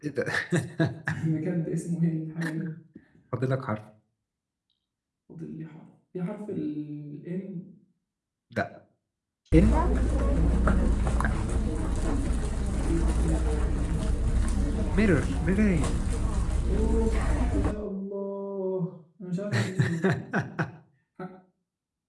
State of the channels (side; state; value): both; identical; correlation 1.00